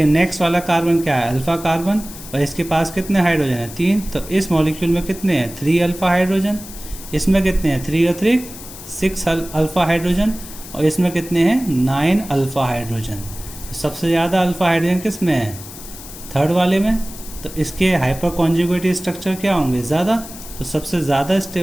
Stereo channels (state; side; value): noise; left; hiss, 14 dB below the sound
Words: नेक्स्ट वाला कार्बन क्या है, अल्फ़ा कार्बन, और इसके पास कितने हाइड्रोजन है, 3। तो इस मॉलिक्यूल में कितने हैं, 3 अल्फ़ा हाइड्रोजन। इसमें कितने हैं, 3 और 3 6 अल्फ़ा हाइड्रोजन, और इसमें कितने हैं, 9 अल्फ़ा हाइड्रोजन। सबसे ज़्यादा अल्फ़ा हाइड्रोजन किस में है, थर्ड वाले में। तो इसके हाइपर कॉन्जुगेटिव स्ट्रक्चर क्या होंगे, ज़्यादा। तो सबसे ज़्यादा